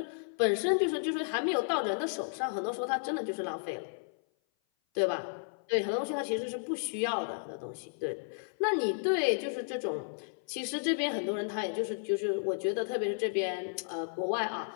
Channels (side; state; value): right; silent; 56 dB below the other